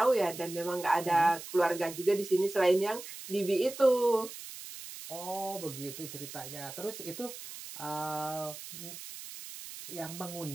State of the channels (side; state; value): right; noise; hiss, 12 dB below the sound